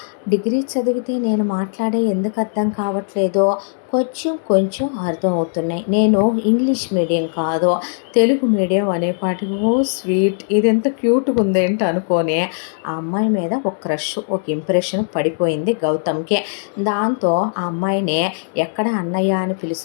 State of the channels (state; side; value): silent; right; digital silence